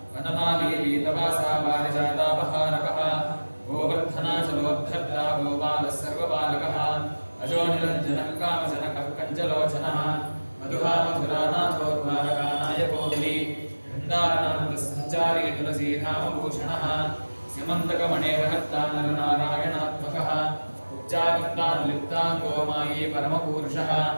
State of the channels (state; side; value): inverted; both; correlation -1.00